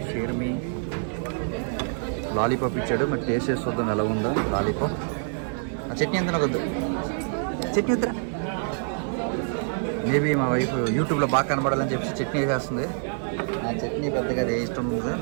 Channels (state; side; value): silent; left; 61 dB below the other